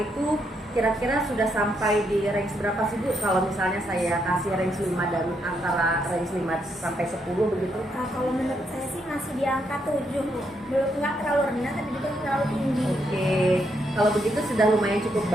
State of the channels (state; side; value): normal; both; correlation 0.77